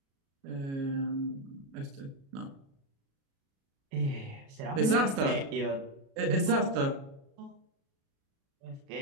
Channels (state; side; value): late; left; 36 ms